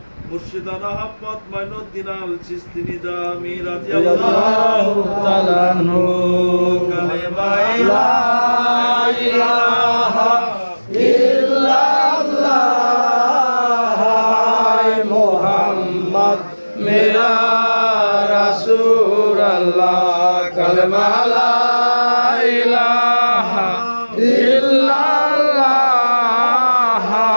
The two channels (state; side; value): inverted; both; correlation -1.00